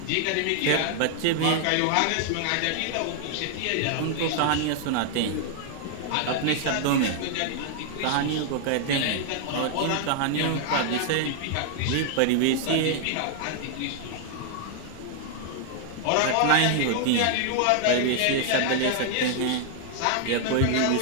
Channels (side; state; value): both; different; correlation 0.00